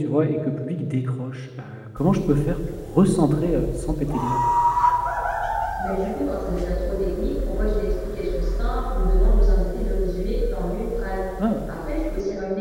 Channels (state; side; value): identical; both; correlation 1.00